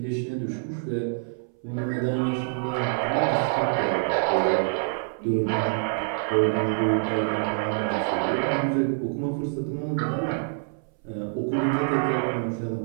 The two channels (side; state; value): left; silent; 60 dB below the other